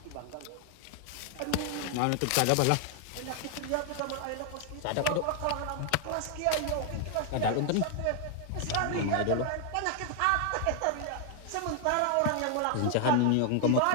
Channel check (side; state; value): both; different; correlation 0.00